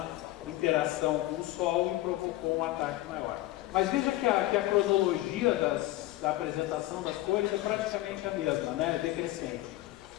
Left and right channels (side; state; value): right; quieter; 16.7 dB